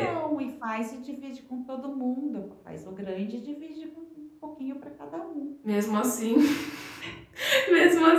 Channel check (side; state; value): both; identical; correlation 1.00